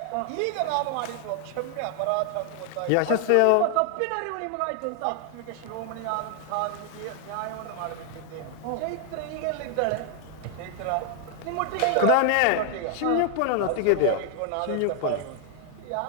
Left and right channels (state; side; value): different; both; correlation 0.00